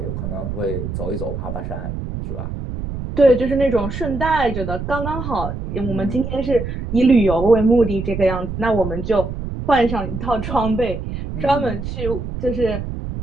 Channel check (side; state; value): right; noise; rumble, 6 dB below the sound